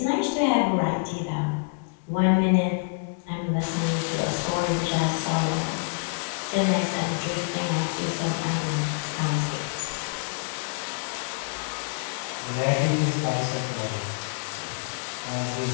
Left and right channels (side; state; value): right; silent; digital silence